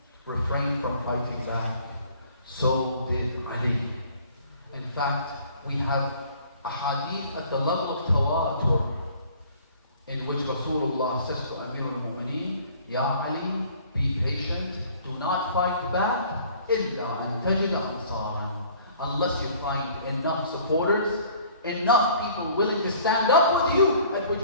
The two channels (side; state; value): both; inverted; correlation -0.53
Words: refrained from fighting back. So did Ali. In fact, we have a hadith at the level of tawatur in which Rasulullah says to Amir al-Mu'mineen, Ya Ali, be patient, do not fight back, إِلَّا أَن تَجِدَ أَنصَارًا, unless you find enough supporters, enough people willing to stand up with you, at which